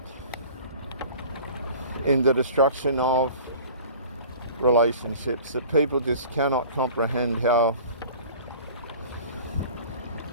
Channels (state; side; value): inverted; both; correlation -0.43